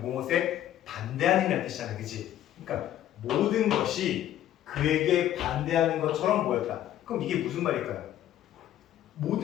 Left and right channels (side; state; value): right; quieter; 12.1 dB